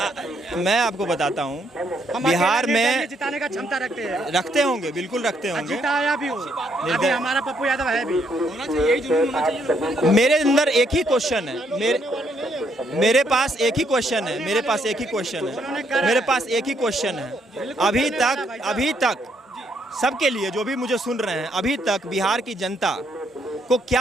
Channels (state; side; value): normal; both; correlation 0.72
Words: मैं आपको बताता हूँ, हम बिहार अकेले में निर्दलीय जिताने का क्षमता रखते हैं, रखते होंगे, बिल्कुल रखते होंगे। जिताया भी हो। अभी हमारा पप्पू यादव है भी। होना चाहिए, यही जुनून होना चाहिए। मेरे अंदर एक ही क्वेश्चन है, मेरे पास एक ही क्वेश्चन है, मेरे पास एक ही क्वेश्चन है, मेरे पास एक ही क्वेश्चन है। अभी तक सबके लिए, जो भी मुझे सुन रहे हैं, अभी तक बिहार की जनता को